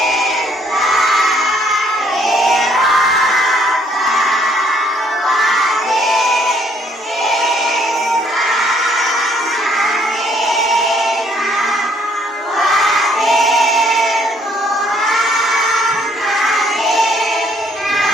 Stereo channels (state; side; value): normal; both; correlation 0.65